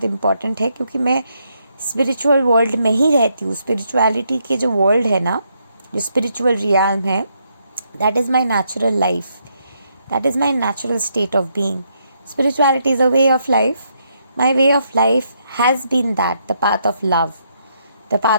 इम्पॉर्टेंट है, क्योंकि मैं स्पिरिचुअल वर्ल्ड में ही रहती हूँ. स्पिरिचुअलिटी के जो वर्ल्ड है ना, जो स्पिरिचुअल रियाल्म है, that is my natural life, that is my natural state of being. Spirituality is a way of life. My way of life has been that, the path of love, the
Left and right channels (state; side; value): inverted; both; correlation -0.76